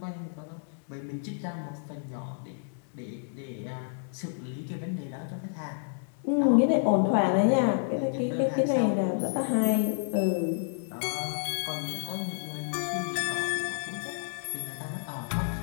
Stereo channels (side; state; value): right; silent; digital silence